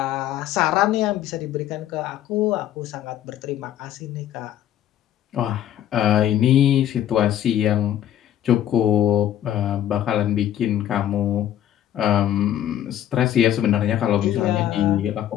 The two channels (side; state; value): right; quieter; 11.4 dB